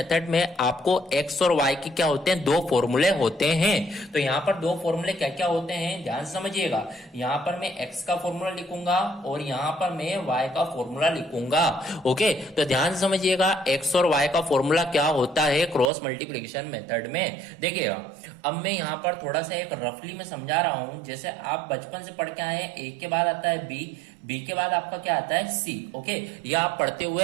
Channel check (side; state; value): left; drops out; at 15.9 s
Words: में आपको एक्स और वाई के क्या होते हैं, दो फॉर्मूले होते हैं। तो यहां पर दो फॉर्मूले क्या क्या होते हैं ध्यान से समझिएगा। यहां पर मैं एक्स का फॉर्मूला लिखूंगा और यहां पर मैं वाई का फॉर्मूला लिखूंगा। ओके, तो ध्यान से समझिएगा एक्स और वाई का फॉर्मूला क्या होता है क्रॉस मल्टीप्लिकेशन मेथड में। देखिएगा अब मैं यहां पर थोड़ा सा एक रफली में समझा रहा हूं। जैसे आप बचपन से पढ़ के आए हैं, ए के बाद आता है बी, बी के बाद आपका क्या आता है सी। ओके, ये आप पढ़ते